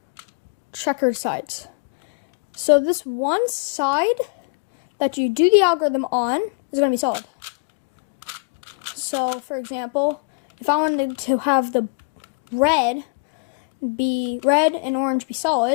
checkered sides. So this one side that you do the algorithm on is going to be solid. So for example, if I wanted to have the red and orange be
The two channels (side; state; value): right; quieter; 33.8 dB